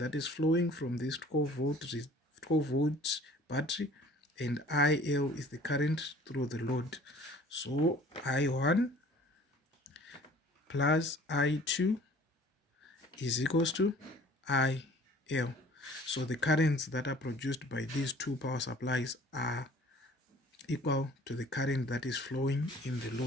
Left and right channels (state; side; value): normal; both; correlation 0.50